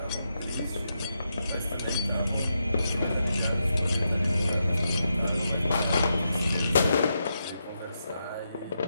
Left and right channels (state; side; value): inverted; both; correlation -0.84